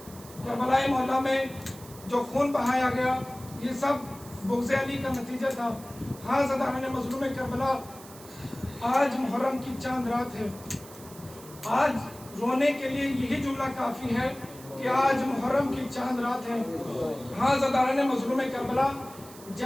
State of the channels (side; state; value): right; noise; hiss, 19 dB below the sound